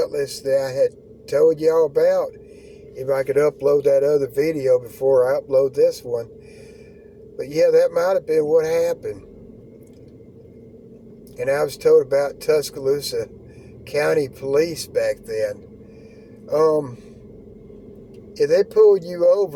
that I had told y'all about. If I could upload that other video before I upload this one. But yeah, that might have been what happened. And I was told about Tuscaloosa County Police back then. If they pulled you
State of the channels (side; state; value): both; identical; correlation 1.00